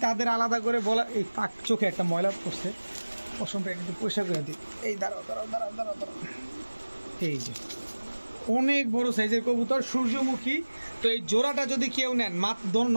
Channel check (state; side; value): inverted; both; correlation -1.00